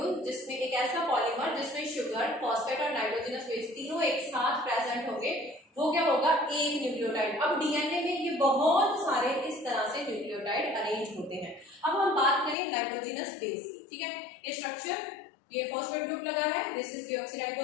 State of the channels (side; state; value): right; drops out; at 12.6 s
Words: जिसमें एक ऐसा पॉलीमर जिसमें शुगर, फॉस्फेट और नाइट्रोजनस बेस तीनों एक साथ प्रेजेंट होंगे, वो क्या होगा? एक न्यूक्लियोटाइड। अब डीएनए में ये बहुत सारे इस तरह से न्यूक्लियोटाइड अरेंज होते हैं। अब हम बात करें नाइट्रोजनस बेस की। ठीक है, ये स्ट्रक्चर, ये फॉस्फेट ग्रुप लगा है, this is